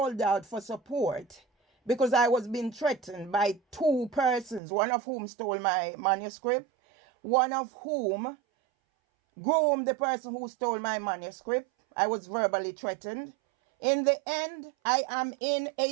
out for support because I was being threatened by two persons, one of whom stole my manuscript, one of whom groomed the person who stole my manuscript. I was verbally threatened. In the end, I am in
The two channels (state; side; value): drops out; left; at 4.6 s